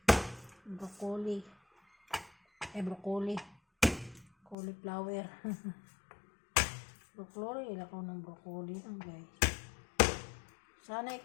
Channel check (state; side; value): drops out; right; at 4.5 s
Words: Broccoli. Broccoli. Cauliflower. Broccoli. Ilan ko ng broccoli lang, guys. Sanay